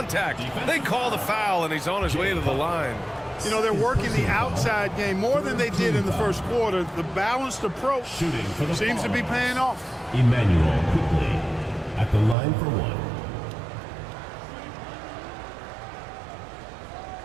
They call the foul, and he's on his way to the line. You know, they're working the outside game more than they did in the first quarter. The balanced approach seems to be paying off. Emmanuel quickly at the line for one.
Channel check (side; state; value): left; drops out; at 12.4 s